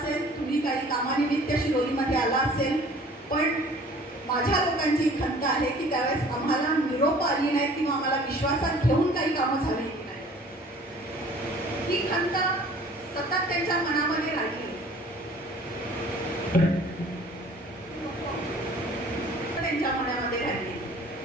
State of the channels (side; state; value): both; normal; correlation 0.50